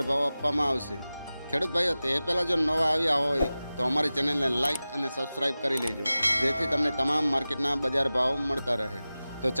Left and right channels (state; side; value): inverted; both; correlation -0.96